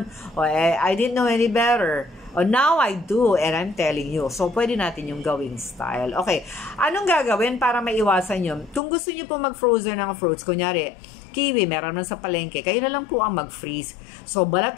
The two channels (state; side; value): drops out; right; at 8.8 s